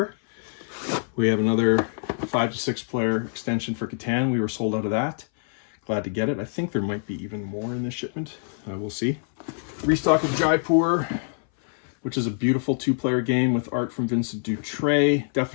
We have another 5 to 6 player extension for Catan. We were sold out of that. Glad to get it. I think there might be even more in this shipment. We'll see. Restock of Jaipur. which is a beautiful 2-player game with art from Vincent Dutray.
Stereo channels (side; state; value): right; silent; 59 dB below the other